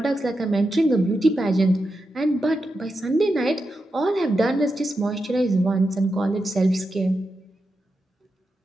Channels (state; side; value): normal; both; correlation 0.88